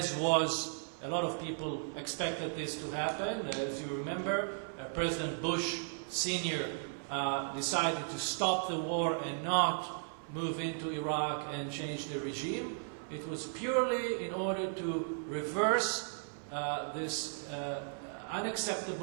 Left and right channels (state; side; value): silent; left; 54 dB below the other